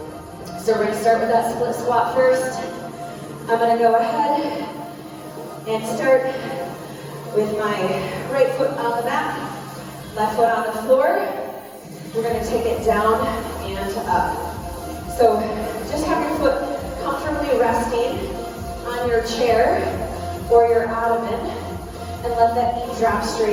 So we're gonna start with that split squat first. I'm gonna go ahead and start with my right foot on the mat, left foot on the floor. We're gonna take it down and up. So just have your foot comfortably resting on your chair or your ottoman, and let that knee drop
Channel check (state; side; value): identical; both; correlation 1.00